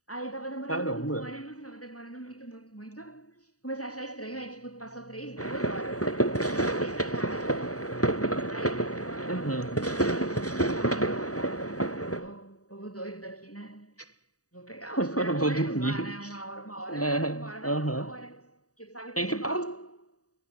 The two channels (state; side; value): late; right; 0.66 ms